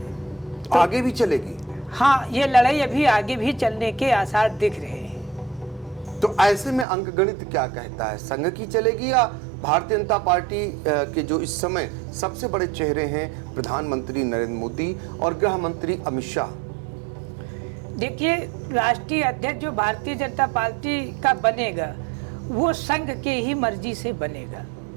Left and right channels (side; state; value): left; drops out; at 6.9 s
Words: तो आगे भी चलेगी? हाँ, ये लड़ाई अभी आगे भी चलने के आसार दिख रहे हैं। तो ऐसे में अंक गणित क्या कहता है? संघ की चलेगी या भारतीय जनता पार्टी के जो इस समय सबसे बड़े चेहरे हैं प्रधानमंत्री नरेंद्र मोदी और गृह मंत्री अमित शाह? देखिए, राष्ट्रीय अध्यक्ष जो भारतीय जनता पार्टी का बनेगा वो संघ के ही मर्जी से बनेगा।